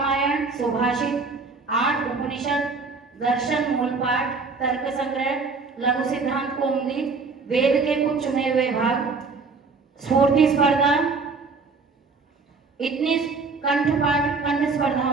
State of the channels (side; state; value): left; quieter; 4.3 dB